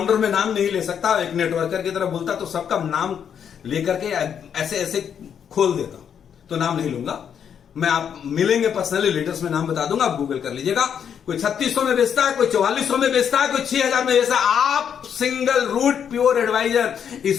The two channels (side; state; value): right; quieter; 8.1 dB